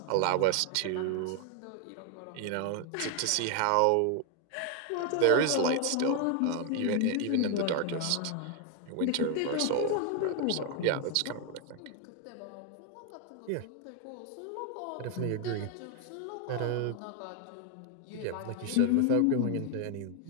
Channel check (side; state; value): both; different; correlation 0.01